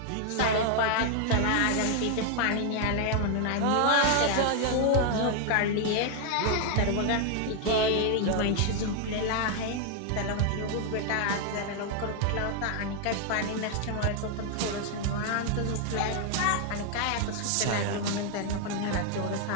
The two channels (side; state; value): both; different; correlation 0.00